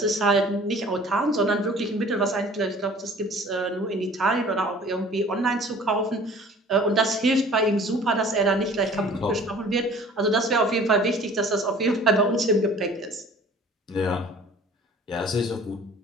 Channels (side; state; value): both; normal; correlation 0.48